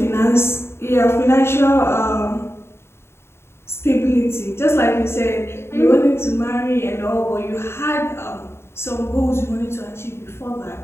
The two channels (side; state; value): right; late; 0.12 ms